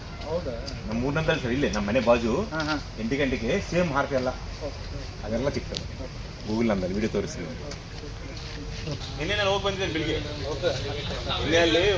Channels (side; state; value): both; identical; correlation 1.00